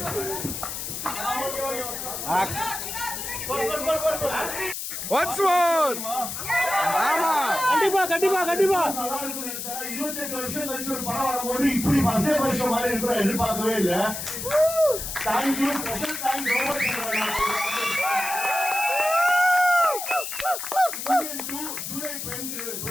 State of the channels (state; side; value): noise; left; hiss, 6 dB below the sound